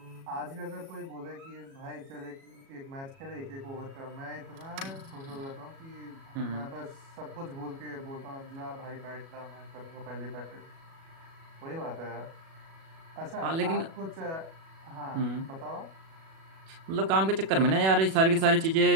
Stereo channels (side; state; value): left; late; 37 ms